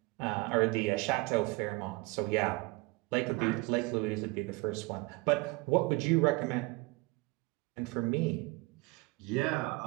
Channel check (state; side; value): quieter; left; 24.9 dB